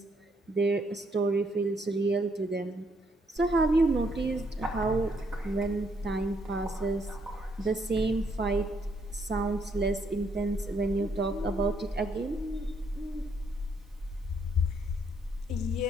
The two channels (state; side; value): normal; both; correlation 0.72